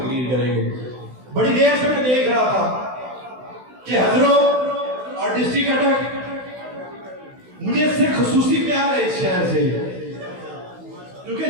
کریں گے. بڑی دیر سے میں دیکھ رہا تھا کہ حضروں اور ڈسٹرکٹ اٹک، مجھے اس سے خصوصی پیار ہے اس شہر سے،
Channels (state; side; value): late; left; 16 ms